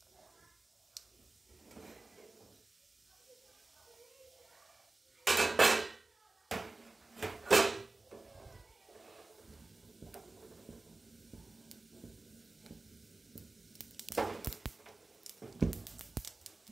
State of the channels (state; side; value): quieter; left; 3.2 dB